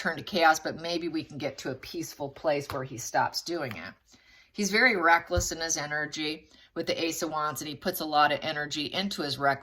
to chaos, but maybe we can get to a peaceful place where he stops doing it. He's very reckless in his energy with the Ace of Wands, and he puts a lot of energy into his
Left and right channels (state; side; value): identical; both; correlation 1.00